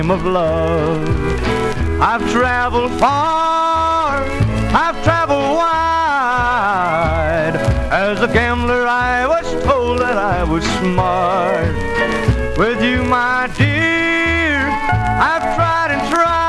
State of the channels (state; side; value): identical; both; correlation 1.00